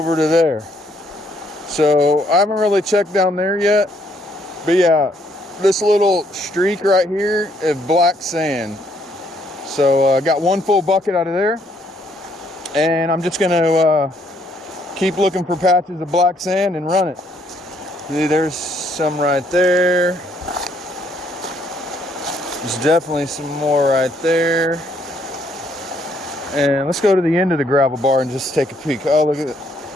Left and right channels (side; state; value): both; normal; correlation 0.68